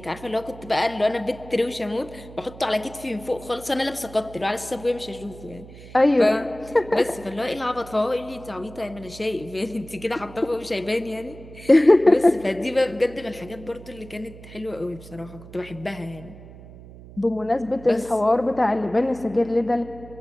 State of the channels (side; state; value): right; noise; hum, 18 dB below the sound